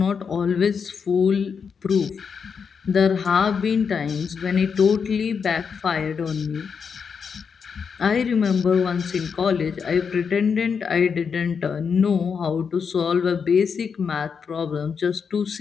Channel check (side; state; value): right; quieter; 6.2 dB